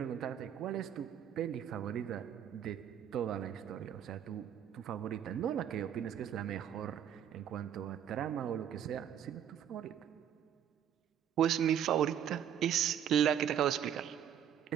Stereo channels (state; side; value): quieter; left; 9.4 dB